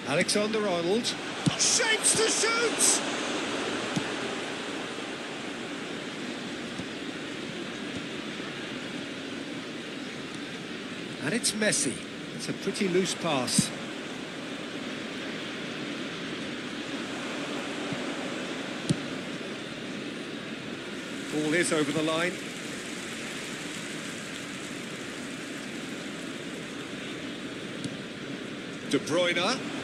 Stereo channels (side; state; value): both; identical; correlation 1.00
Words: Alexander-Arnold. Shapes to shoot! And it's Messi. It's a pretty loose pass. Ball is over the line. De Bruyne. And